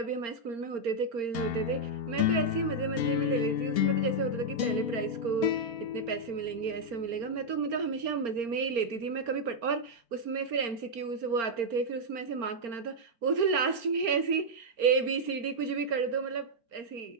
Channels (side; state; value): left; late; 4.4 ms